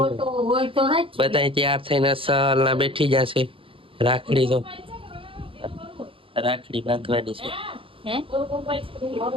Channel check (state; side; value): late; left; 0.26 ms